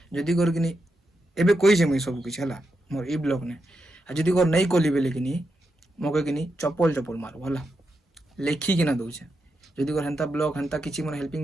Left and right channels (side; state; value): both; normal; correlation 0.85